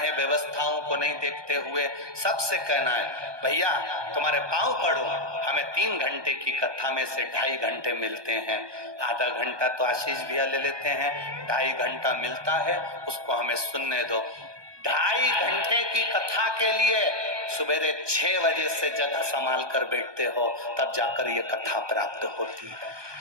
व्यवस्थाओं को नहीं देखते हुए सबसे कहना है, भैया तुम्हारे पांव पड़ो, हमें 3 घंटे की कथा में से 2.5 घंटे मिलते हैं, आधा घंटा तो आशीष भैया ले लेते हैं, 2.5 घंटा मिलता है, उसको हमें सुनने दो। 2.5 घंटे की कथा के लिए सवेरे 6 बजे से जगह संभाल कर बैठते हो, तब जाकर ये कथा प्राप्त होती है,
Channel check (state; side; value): late; left; 1.2 ms